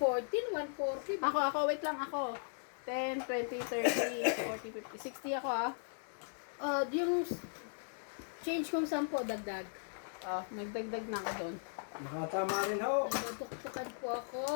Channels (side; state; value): right; silent; digital silence